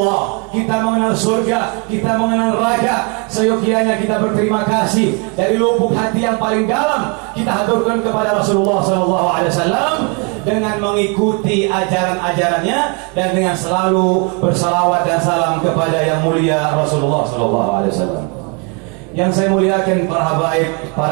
kita mengenal surga, kita mengenal neraka. Seyogianya kita berterima kasih dari lubuk hati yang paling dalam. Kita haturkan kepada Rasulullah SAW dengan mengikuti ajaran-ajarannya dan dengan selalu bersalawat dan salam kepada yang mulia Rasulullah SAW. Yang saya muliakan para habaib,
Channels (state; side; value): quieter; left; 34.3 dB